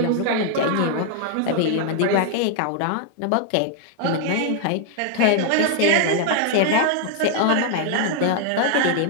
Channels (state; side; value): different; both; correlation 0.00